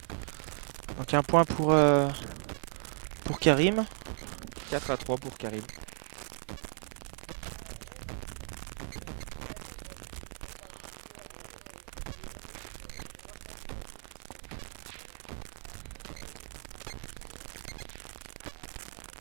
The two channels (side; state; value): left; silent; 54 dB below the other